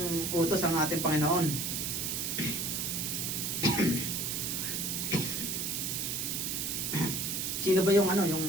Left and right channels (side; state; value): right; noise; hiss, 1 dB below the sound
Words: utos ang ating Panginoon. Sino ba yung ano,